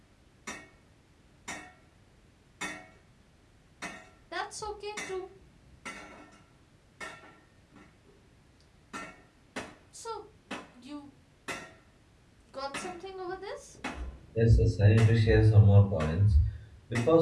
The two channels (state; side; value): identical; both; correlation 1.00